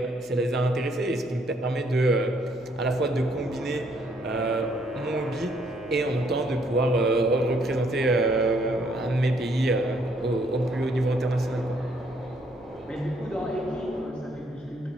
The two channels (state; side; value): noise; left; hum, 29 dB below the sound